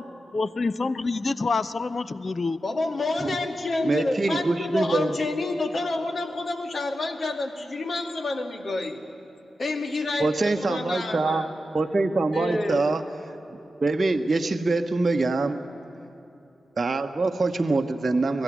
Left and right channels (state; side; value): normal; both; correlation 0.91